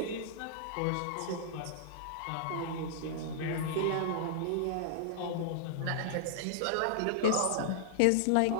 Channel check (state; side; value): different; both; correlation -0.01